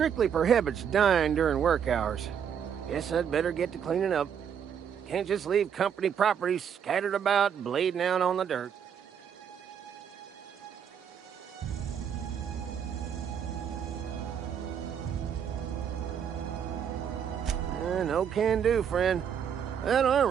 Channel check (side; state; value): left; quieter; 8.1 dB